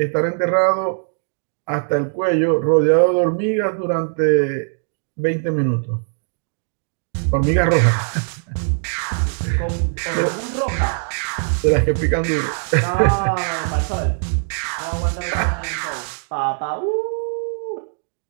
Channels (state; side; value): silent; left; digital silence